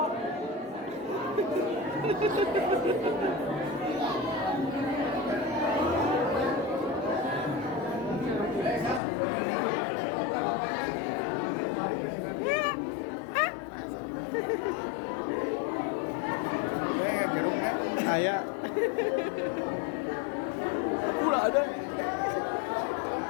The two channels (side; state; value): right; drops out; at 9.0 s